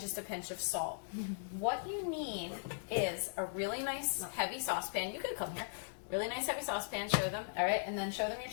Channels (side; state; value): right; silent; digital silence